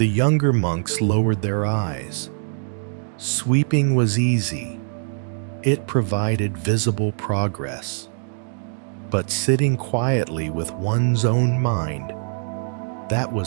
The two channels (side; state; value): left; silent; digital silence